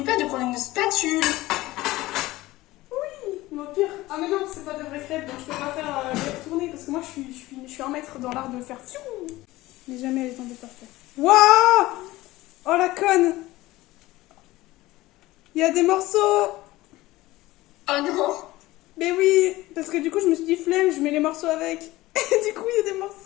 pas de prendre une spatule. Oui, mais au pire. Ah, mais non, c'est pas de vraies crêpes, donc je peux pas faire les retourner parce que moi, je suis un maître dans l'art de faire fiou. Mais jamais elle est tombée parfaite. Waouh! Oh la conne! Il y a des morceaux! Oh non! Mais oui! Parce que du coup, je me suis dit flemme, je mets les morceaux avec. Et du coup, il y a des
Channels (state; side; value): quieter; right; 18.1 dB